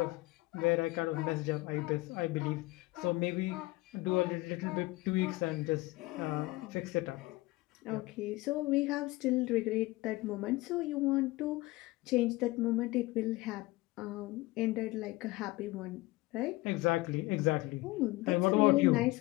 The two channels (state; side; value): quieter; right; 20.7 dB